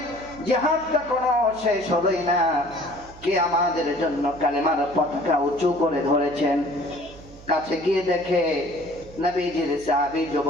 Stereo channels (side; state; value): right; noise; hum, 20 dB below the sound